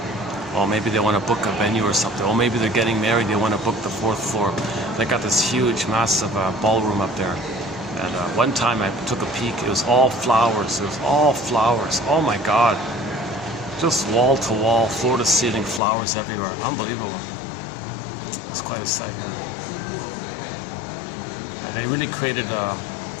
Or maybe they want to book a venue or something. Or maybe they're getting married, they want to book the 4th floor. They got this huge, massive ballroom up there. And one time I took a peek, it was all flowers. It was all flowers. Oh my God. Just wall to wall, floor to ceiling, flowers everywhere. Unbelievable. It's quite a sight. Yeah, they really created a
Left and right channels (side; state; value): right; drops out; at 15.8 s